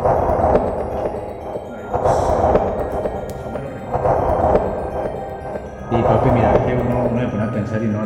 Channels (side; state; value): both; identical; correlation 1.00